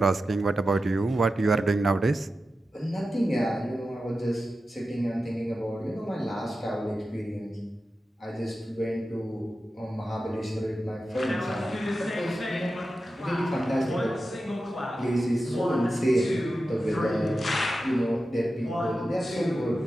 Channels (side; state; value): both; normal; correlation 0.92